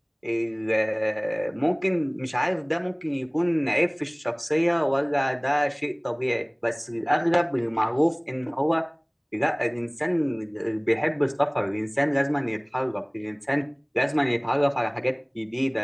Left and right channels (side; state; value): both; identical; correlation 1.00